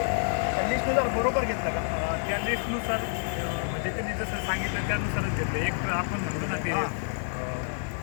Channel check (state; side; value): silent; right; digital silence